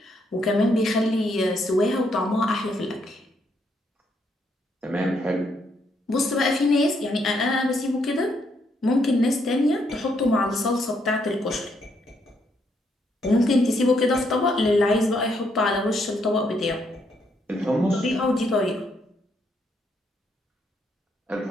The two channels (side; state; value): both; normal; correlation 0.74